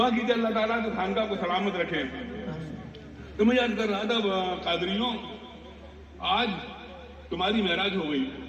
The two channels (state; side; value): identical; both; correlation 1.00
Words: کیجیے اللہ تعالیٰ کہ خانقاہ کو سلامت رکھے. تو میں یاد کر رہا تھا قادریوں، آج تمہاری معراج ہو گئی.